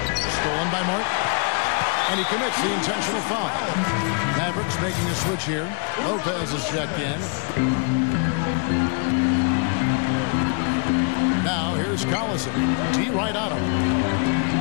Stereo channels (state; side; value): quieter; right; 39.4 dB